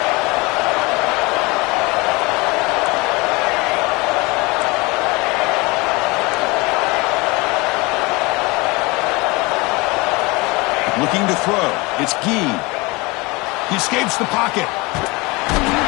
Looking to throw. It's Gee. He escapes the pocket.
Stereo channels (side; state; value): right; quieter; 24.9 dB